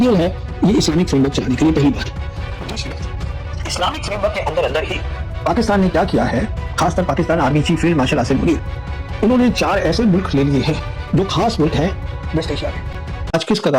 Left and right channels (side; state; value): both; identical; correlation 1.00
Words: है ये इस्लामिक फ्रेमवर्क चलाने के लिए। पहली बात। दूसरी बात, इस्लामिक फ्रेमवर्क के अंदर अंदर ही पाकिस्तान ने क्या किया है, खासकर Pakistan army chief field marshal Asim Munir, उन्होंने 4 ऐसे मुल्क ले लिए हैं जो खास मुल्क हैं वेस्ट एशिया में। आज किस